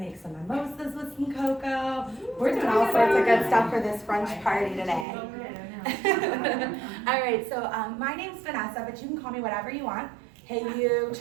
some mimosas with some cocoa. We're doing all sorts of good stuff for this brunch party today. All right, so my name's Vanessa, but you can call me whatever you want. Hey you,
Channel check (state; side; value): drops out; left; at 5.1 s